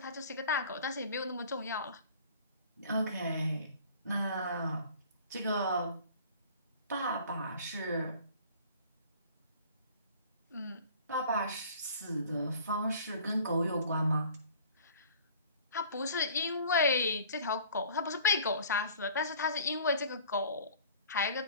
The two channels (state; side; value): inverted; both; correlation -0.48